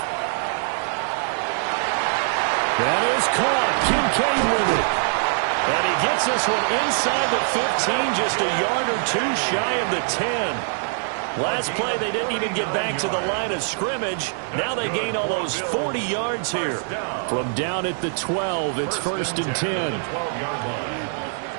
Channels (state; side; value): silent; left; 63 dB below the other